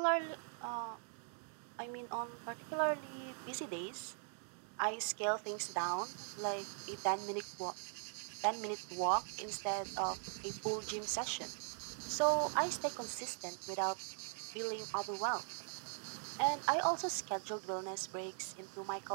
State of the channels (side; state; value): left; silent; 50 dB below the other